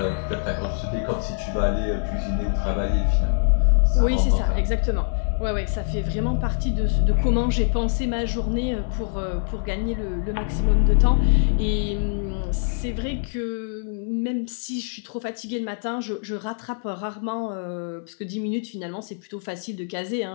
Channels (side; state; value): right; silent; 63 dB below the other